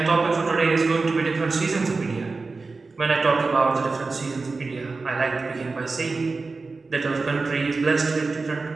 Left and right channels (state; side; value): quieter; left; 3.9 dB